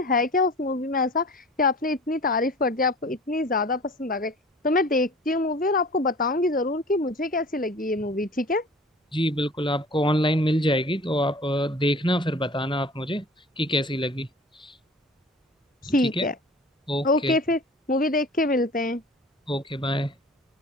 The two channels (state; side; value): normal; both; correlation 0.43